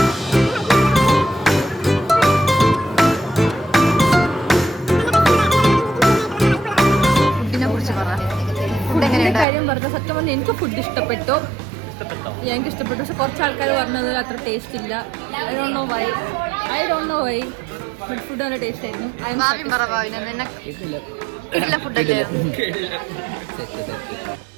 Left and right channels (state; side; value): drops out; left; at 9.5 s